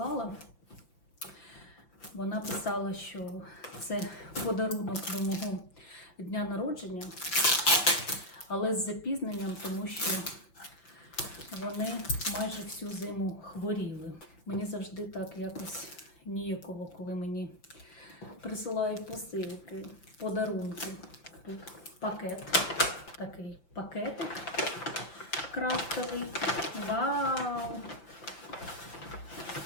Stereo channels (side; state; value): right; late; 5.9 ms